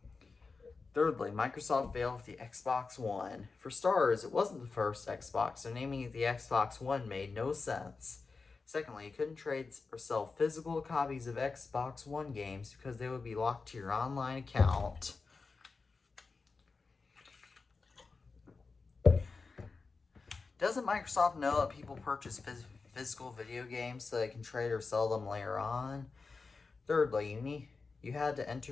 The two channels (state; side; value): quieter; right; 4.3 dB